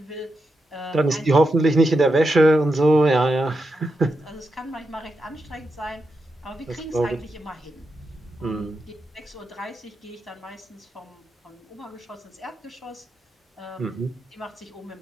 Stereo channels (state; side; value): normal; both; correlation 0.86